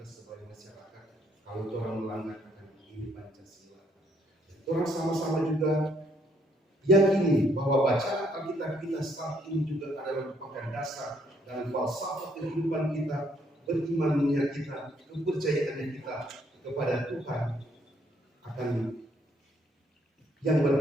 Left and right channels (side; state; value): both; normal; correlation 0.69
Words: sebagai masyarakat. Kalau orang melanggar ini Pancasila, orang sama-sama juga yakini bahwa bacaan Alkitab kita saat ini juga adalah merupakan dasar dan falsafah kehidupan kita, berimannya kita, kepercayaannya kita kepada Tuhan, akan yang